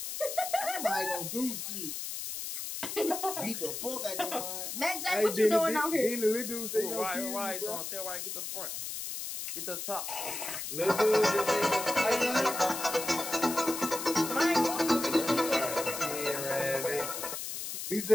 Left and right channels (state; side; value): noise; left; hiss, 5 dB below the sound